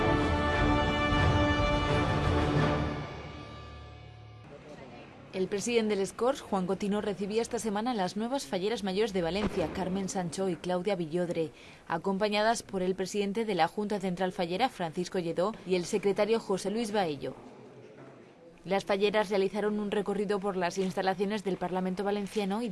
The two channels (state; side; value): identical; both; correlation 1.00